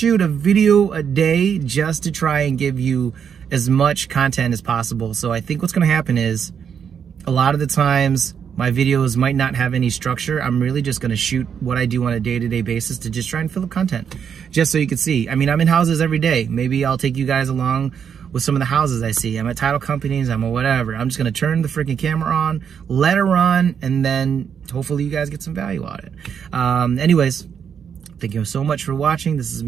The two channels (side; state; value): left; quieter; 7.5 dB